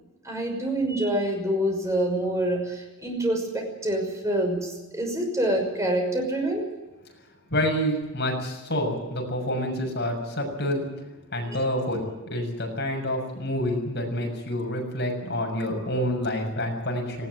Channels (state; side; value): normal; both; correlation 0.31